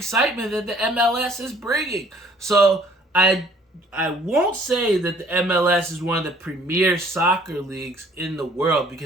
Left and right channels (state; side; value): normal; both; correlation 0.57